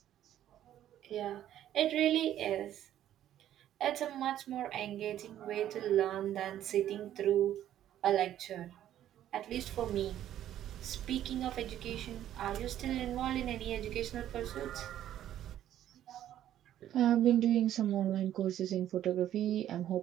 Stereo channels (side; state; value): left; quieter; 11.7 dB